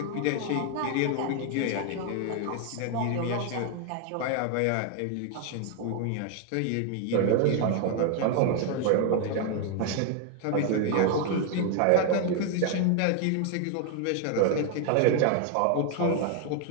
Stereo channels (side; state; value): both; different; correlation 0.01